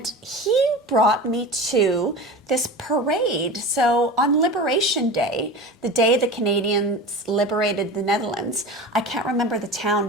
he brought me to this parade. So on Liberation Day, the day the Canadians liberated the Netherlands, I can't remember the town,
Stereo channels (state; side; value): normal; both; correlation 0.31